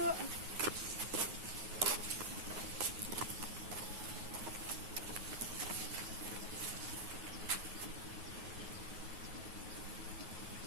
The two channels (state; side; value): late; left; 9.4 ms